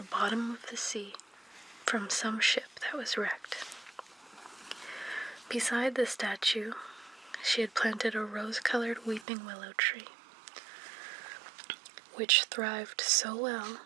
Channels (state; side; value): drops out; left; at 9.2 s